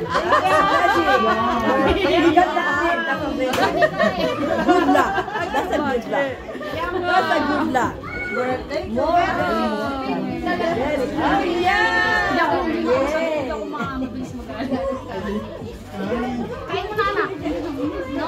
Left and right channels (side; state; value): both; identical; correlation 1.00